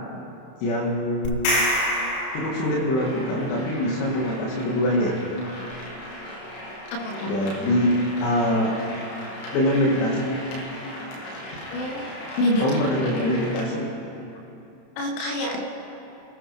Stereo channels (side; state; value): right; late; 31 ms